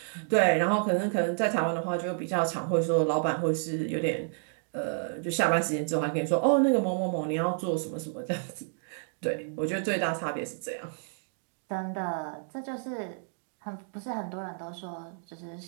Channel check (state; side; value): silent; left; digital silence